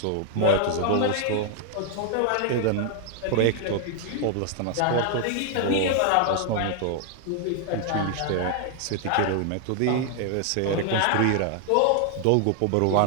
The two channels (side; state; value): both; different; correlation 0.00